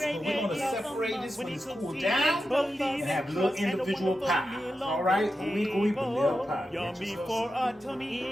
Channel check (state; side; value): normal; both; correlation 0.90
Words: But we're going to separate this when it's cooled down and have little individual pies. All right, ooey gooey BUNELLE pie. Yummy for a tummy.